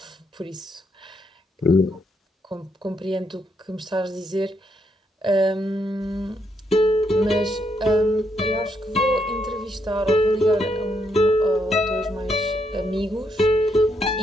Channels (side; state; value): both; normal; correlation 0.76